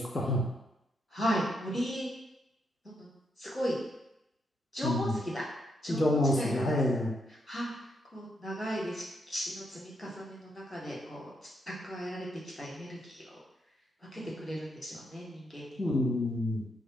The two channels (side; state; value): both; normal; correlation 0.78